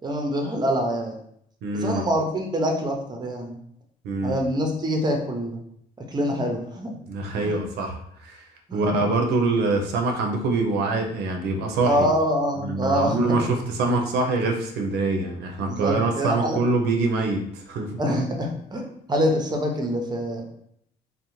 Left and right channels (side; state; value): both; normal; correlation 0.48